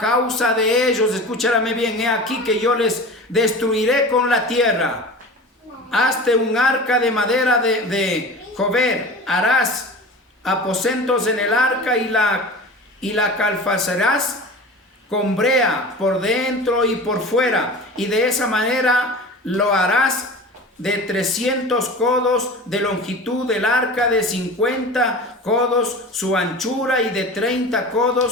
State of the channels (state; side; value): normal; both; correlation 0.35